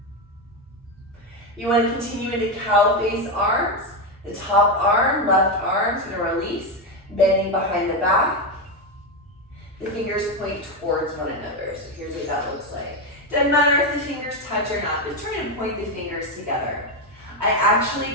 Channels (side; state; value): both; normal; correlation 0.10